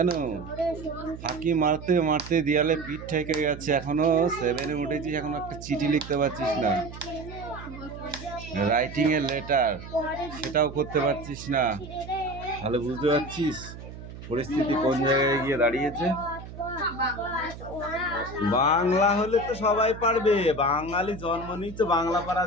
ফাঁকি মারতে মারতে দেয়ালে পিঠ ঠেকে গেছে, এখনো 7-এ উঠেছিস, এখনো একটা চিঠি লিখতে পারছিস না? রাইটিং এর লেটার সেটাও করতে পারছিস না, তাহলে বুঝতে পারছিস পরিস্থিতি কোন জায়গায় গিয়ে দাঁড়িয়েছে। বাংলা হলে তো সবাই পারবে, বাঙালি জন্ম নিচ্ছে বাংলা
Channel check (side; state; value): right; noise; hum, 13 dB below the sound